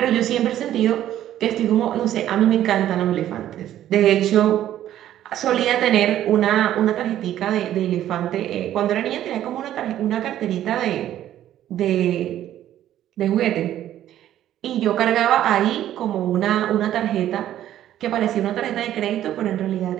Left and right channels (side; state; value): left; quieter; 12.1 dB